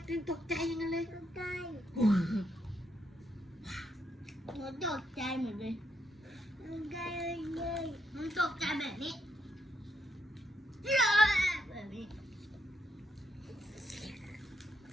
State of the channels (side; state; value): both; normal; correlation 0.78